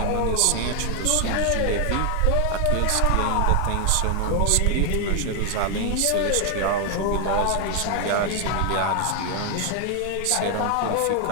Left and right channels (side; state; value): both; different; correlation 0.00